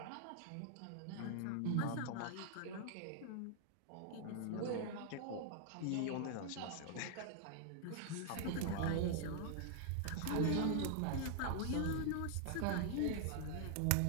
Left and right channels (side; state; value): both; different; correlation -0.01